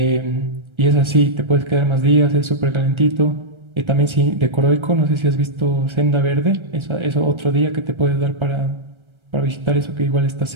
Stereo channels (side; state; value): left; late; 1.3 ms